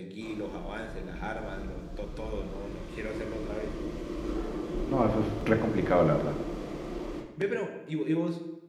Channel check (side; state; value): both; identical; correlation 1.00